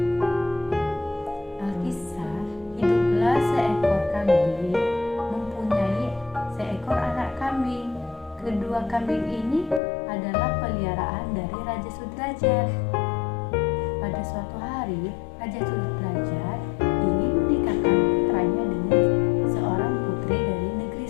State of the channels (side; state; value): right; drops out; at 9.8 s